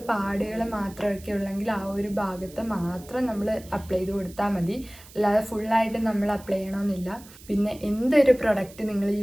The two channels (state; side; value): noise; right; hiss, 21 dB below the sound